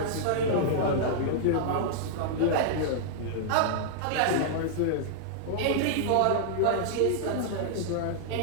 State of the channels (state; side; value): different; both; correlation -0.01